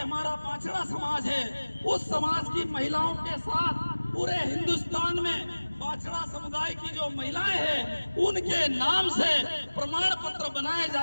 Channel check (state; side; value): inverted; both; correlation -1.00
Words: पाचड़ा समाज है, उस समाज की महिलाओं के साथ पूरे हिंदुस्तान में पाचड़ा समुदाय की जो महिलाएं हैं उनके नाम से प्रमाण पत्र बनाए